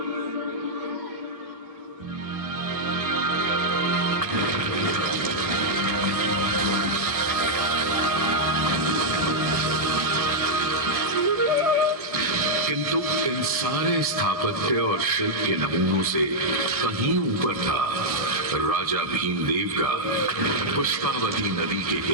किंतु इन सारे स्थापत्य और शिल्प के नमूनों से कहीं ऊपर था राजा भीमदेव का पुष्पावती नदी के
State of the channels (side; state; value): left; late; 1.6 ms